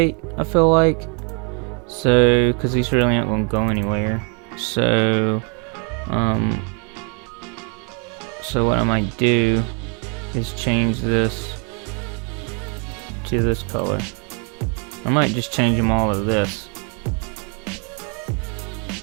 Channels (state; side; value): quieter; left; 37.1 dB